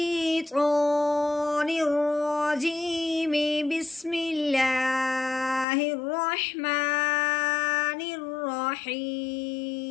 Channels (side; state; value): right; drops out; at 5.7 s